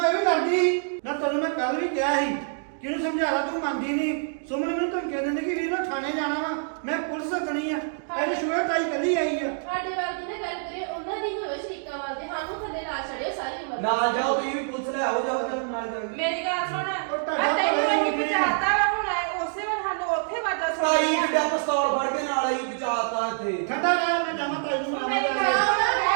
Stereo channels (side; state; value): left; silent; digital silence